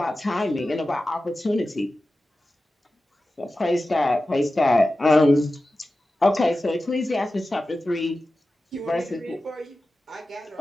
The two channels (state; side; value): normal; both; correlation 0.94